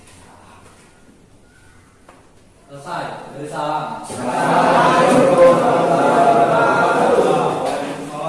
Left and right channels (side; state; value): both; identical; correlation 1.00